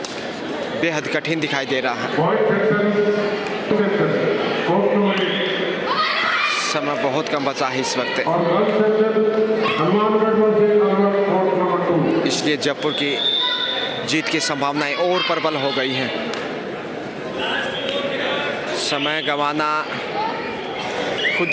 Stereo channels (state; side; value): identical; both; correlation 1.00